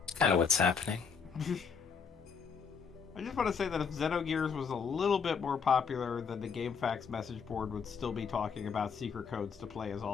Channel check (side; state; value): right; quieter; 6.1 dB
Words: Kind of what's happening. I just want to say that if Xenogears was a little bit more popular, then the GameFAQs message board would still be talking about secret codes to play as